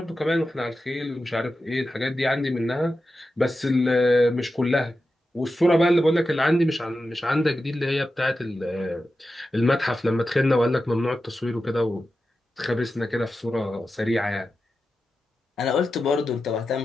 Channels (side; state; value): both; normal; correlation 0.91